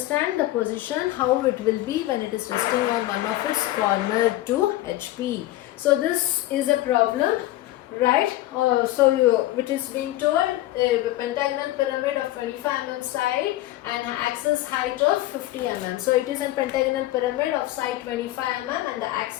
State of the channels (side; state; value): right; quieter; 15.9 dB